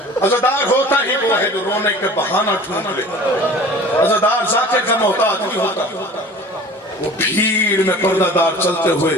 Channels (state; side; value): normal; both; correlation 0.43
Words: عزادار ہوتا ہی وہ ہے جو رونے کے بہانہ ڈھونڈ لے. عزادار ذاکر کا محتاج نہیں ہوتا, وہ بھیڑ میں پردہ دار چلتے ہوئے